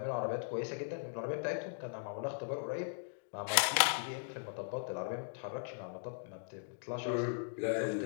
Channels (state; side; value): silent; right; digital silence